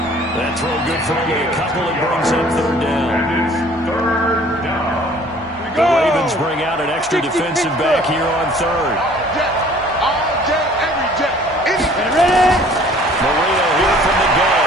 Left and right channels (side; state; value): right; noise; hum, 21 dB below the sound